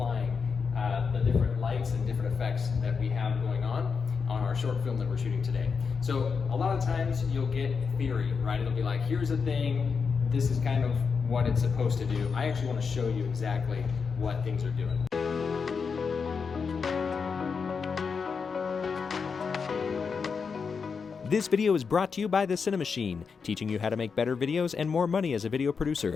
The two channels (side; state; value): right; quieter; 5.5 dB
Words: the different lights and different effects that we have going on our short film that we're shooting today. So a lot of times you'll get theory, right? It'll be like, here's a thing, this is kind of what it's supposed to do. I actually want to show you exactly what things are doing. This video is brought to you by the Cinemachine, teaching you how to make better videos and more money as a video